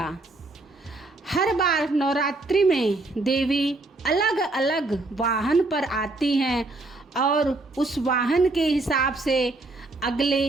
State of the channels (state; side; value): quieter; left; 3.0 dB